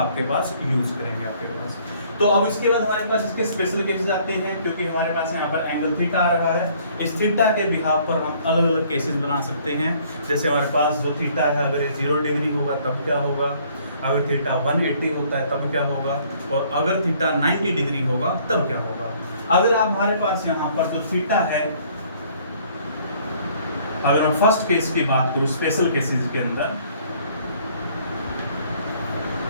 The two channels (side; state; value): both; inverted; correlation -0.60